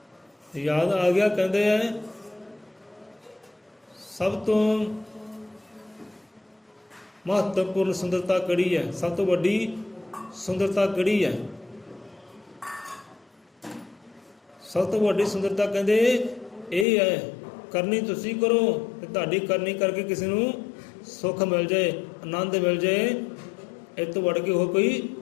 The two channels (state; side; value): drops out; right; at 16.9 s